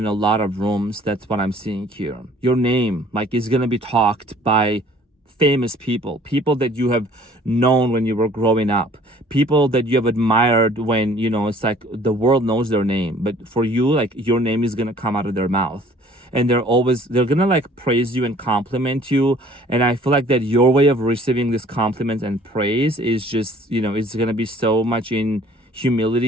a lot of rooms. That's what I'm seeing here. Your name like is gonna be talked by famous people that you have known when you were growing up, people that you have admired when it's like the world knows their name, but for you, like your name is gonna come out of their mouth, and they're gonna like praise you and compliment you. And I feel like that your way of receiving this compliment and praise is just it's gonna be so much in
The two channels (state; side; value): normal; both; correlation 0.54